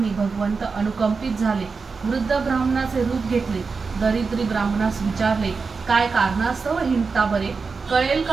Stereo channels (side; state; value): left; quieter; 4.8 dB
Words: भगवंत अनुकंपित झाले. वृद्ध ब्राह्मणाचे रूप घेतले. दरिद्री ब्राह्मणास विचारले, काय कारणास्तव हिंडता बरे, कळेल